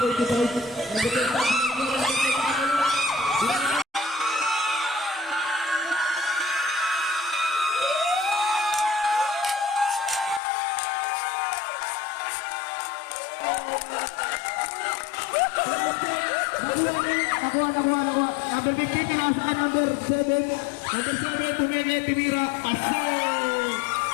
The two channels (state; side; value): drops out; right; at 10.4 s